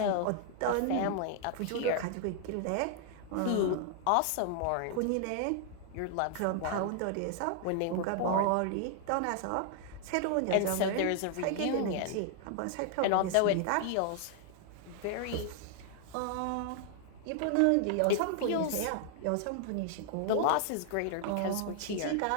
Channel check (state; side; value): different; both; correlation 0.00